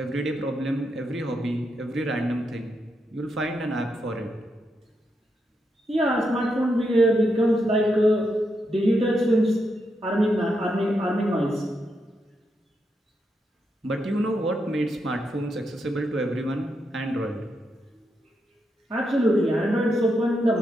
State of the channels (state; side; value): normal; both; correlation 0.83